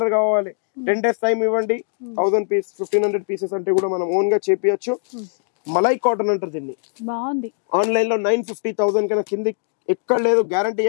కావాలి 10 days టైం ఇవ్వండి 1000 పీస్ 1500 పీసెస్ అంటే కూడా మనం ఓన్ గా చేపియచ్చు మలై కాటన్ అంటారు దీన్ని బాగుంది ఆన్లైన్ లో 950,000 కన్నా కింది ఎక్కడ లేదు గ్యారంటీ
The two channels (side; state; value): right; silent; digital silence